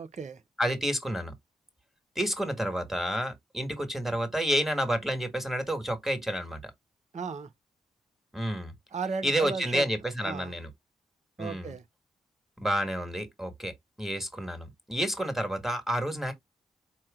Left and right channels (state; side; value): normal; both; correlation 0.84